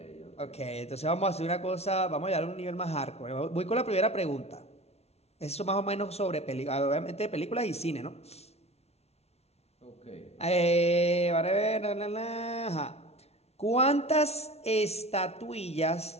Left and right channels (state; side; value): late; right; 0.31 ms